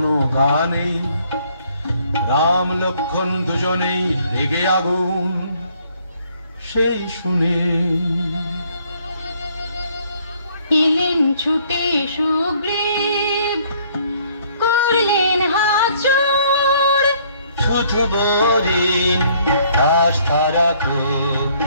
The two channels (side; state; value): both; inverted; correlation -0.63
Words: গা নেই। রাম লক্ষ্মণ দুজনেই রেগে আগুন, সেই শুনে এলেন ছুটে সুগ্রীব, করলেন হাত জোড়। শুধু বরিন আস্থা রাখো